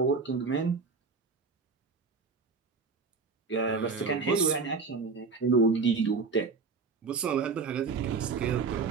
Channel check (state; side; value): quieter; left; 4.7 dB